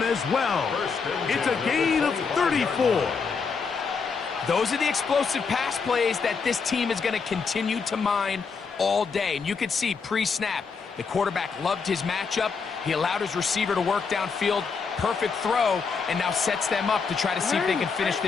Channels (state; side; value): quieter; right; 5.3 dB